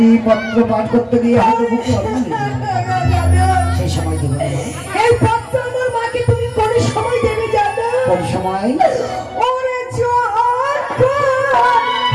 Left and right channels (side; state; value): both; identical; correlation 1.00